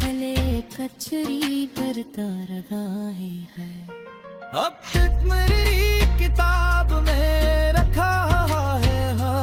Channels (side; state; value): both; identical; correlation 1.00